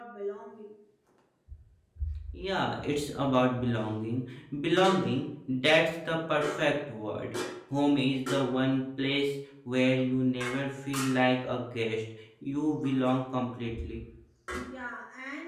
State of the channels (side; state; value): both; identical; correlation 1.00